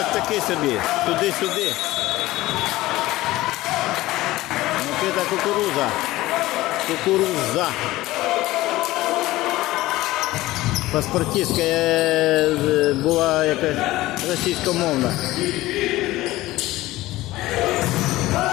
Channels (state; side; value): quieter; right; 17.6 dB